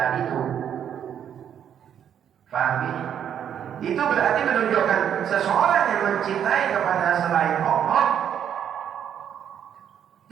itu. Paham ini? Itu berarti menunjukkan seseorang yang mencintai kepada selain Allah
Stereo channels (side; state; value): left; quieter; 9.1 dB